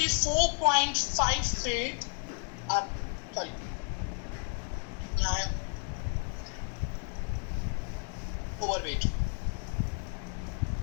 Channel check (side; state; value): right; quieter; 39.8 dB